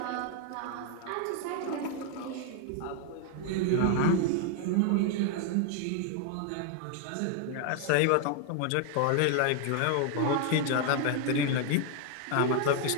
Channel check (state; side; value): different; both; correlation 0.00